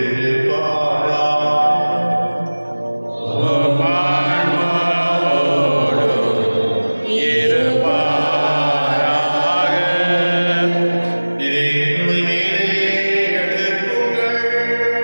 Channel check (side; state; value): both; inverted; correlation -1.00